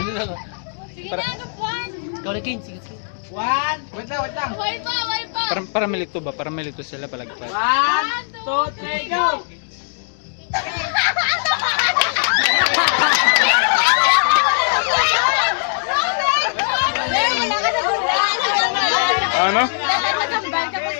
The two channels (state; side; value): silent; right; digital silence